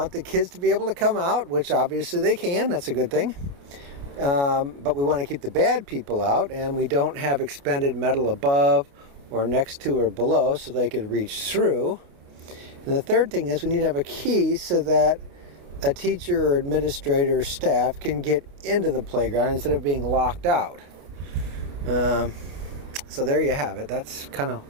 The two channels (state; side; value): late; left; 29 ms